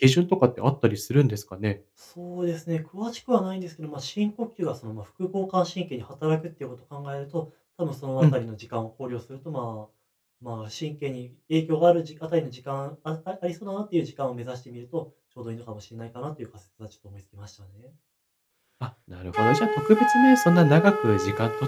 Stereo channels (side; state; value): both; identical; correlation 1.00